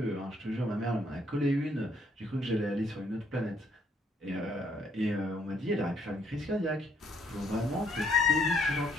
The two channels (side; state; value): both; normal; correlation 0.68